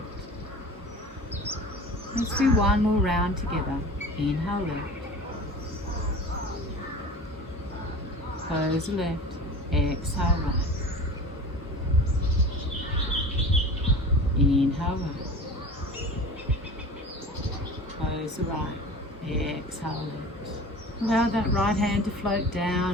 Let's do 1 more round together. Inhale left. Close the left, exhale right. Inhale right. Close the right, exhale left. Allow that right hand to float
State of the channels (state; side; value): normal; both; correlation 0.38